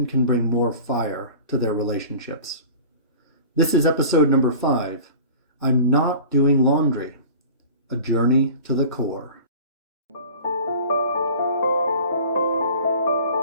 can bring more fire to their relationships. This is episode number 5, I'm Not Doing Laundry, a journey to the core.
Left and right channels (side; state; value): both; inverted; correlation -0.41